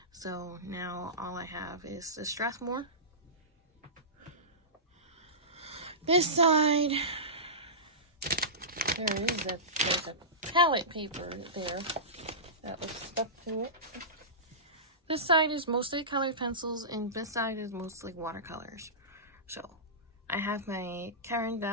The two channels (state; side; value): normal; both; correlation -0.20